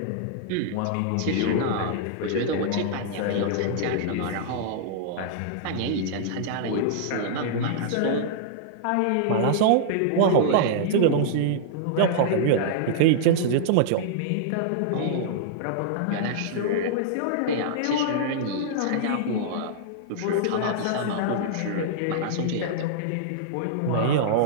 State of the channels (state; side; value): different; both; correlation -0.01